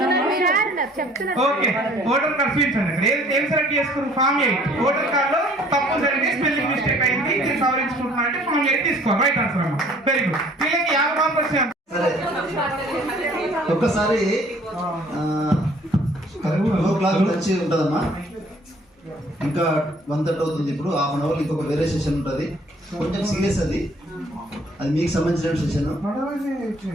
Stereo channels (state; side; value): normal; both; correlation 0.57